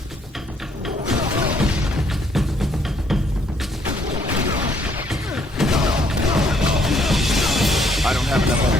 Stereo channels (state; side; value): normal; both; correlation 0.68